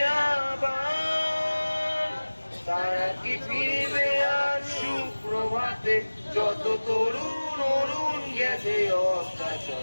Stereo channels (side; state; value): both; inverted; correlation -1.00